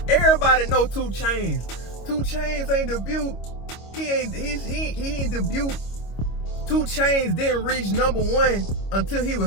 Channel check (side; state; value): right; late; 25 ms